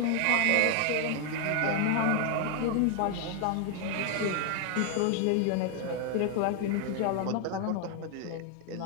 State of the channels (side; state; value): both; different; correlation 0.00